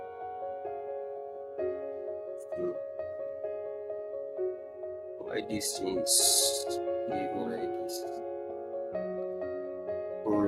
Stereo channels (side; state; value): both; identical; correlation 1.00